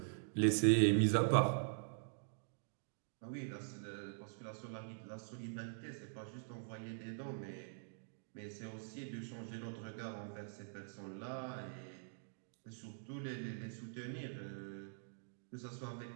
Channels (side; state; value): left; silent; digital silence